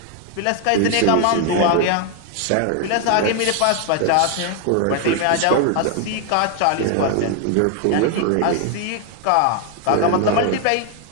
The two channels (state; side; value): different; both; correlation 0.00